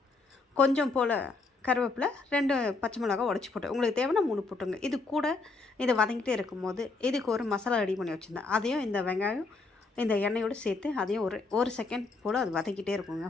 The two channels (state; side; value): quieter; right; 3.8 dB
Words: கொஞ்சம் போல் கருவேப்பிலை, 2 பச்சை மிளகா உடச்சி போட்டேன். உங்களுக்கு தேவைன்னா 3 போட்டுங்க. இது கூட இதை வதங்கிட்டே இருக்கும்போது இதுக்கு ஒரு மசாலா ரெடி பண்ணி வச்சுருந்தேன். அதையும் இந்த வெங்காயம் இந்த எண்ணெயோடு சேர்த்து அதையும் ஒரு செகண்ட் போல் அது வதக்கிட்டே இருக்குங்க.